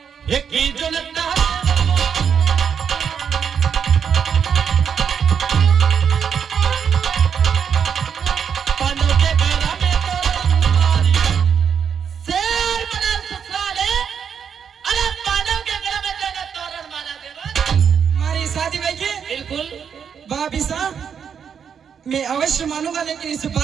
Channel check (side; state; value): left; quieter; 7.4 dB